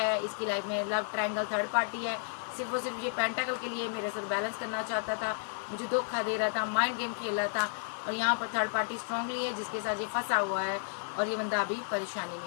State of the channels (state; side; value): silent; right; digital silence